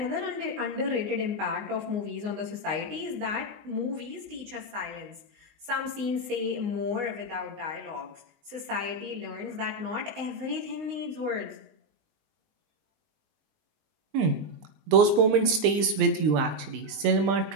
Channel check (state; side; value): late; left; 20 ms